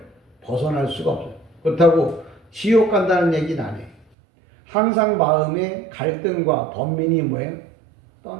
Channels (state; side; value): drops out; left; at 4.0 s